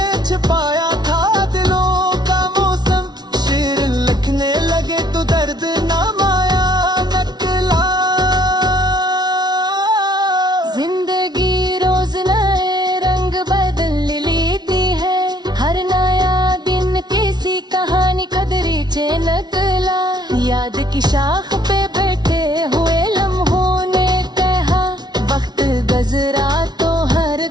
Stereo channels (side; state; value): left; late; 0.20 ms